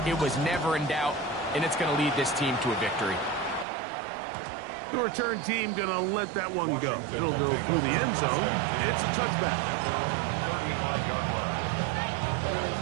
It was never in doubt, and it's going to lead this team to a victory. The return team going to let that one go. It'll go through the end zone. It's a touchback.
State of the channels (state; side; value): drops out; left; at 3.7 s